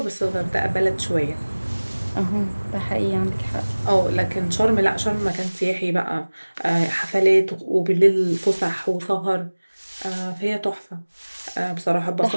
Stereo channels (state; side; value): inverted; both; correlation -1.00